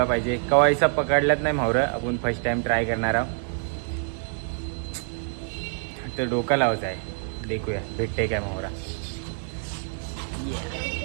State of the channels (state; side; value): silent; left; 55 dB below the other